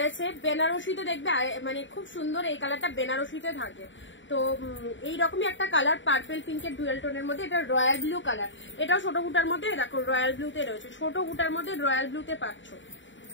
বেনারসিতে দেখবে মানে খুব সুন্দর এই কালারটা বেনারসিতে থাকে। তো এইরকমই একটা কালার পার্পেল পিঙ্কের ডুয়েল টোনের মধ্যে, এটা রয়্যাল ব্লু কালার, এটাও ছোট বুটার মধ্যে, দেখো রয়্যাল ব্লুতে রয়েছে, ছোট বুটার মধ্যে রয়্যাল ব্লুতে পাচ্ছ,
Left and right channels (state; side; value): late; right; 0.55 ms